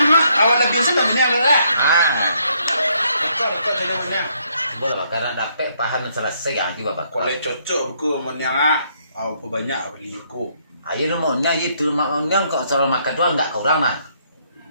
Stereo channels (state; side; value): inverted; both; correlation -0.71